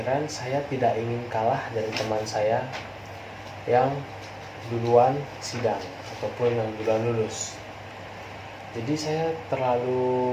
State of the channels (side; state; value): both; identical; correlation 1.00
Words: saya tidak ingin kalah dari teman saya yang duluan sidang ataupun yang duluan lulus. Jadi saya